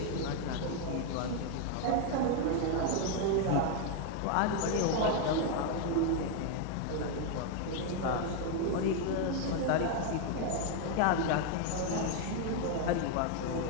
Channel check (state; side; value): different; both; correlation 0.01